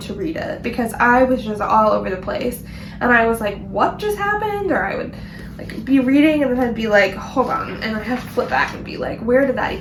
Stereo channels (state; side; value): identical; both; correlation 1.00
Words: to read it because I was just all over the place, and I was like, what just happened? Or I would like be reading and then I'd be like, hold on, and I'd have to flip back and be like, where did that